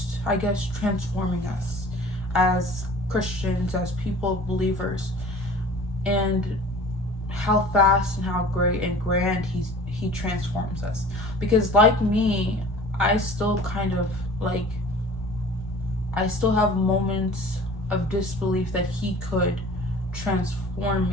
I guess, transforming us as Christians, as people, believers, and how fast and how great and grand he transforms us. Because like me, I still kind of like, I still have moments of disbelief that he could transform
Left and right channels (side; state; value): both; normal; correlation 0.44